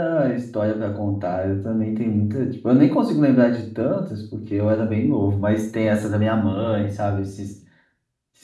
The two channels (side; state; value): both; identical; correlation 1.00